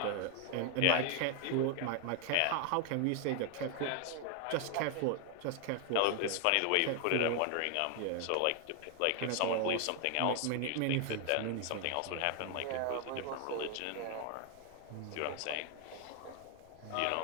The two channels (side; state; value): both; different; correlation 0.00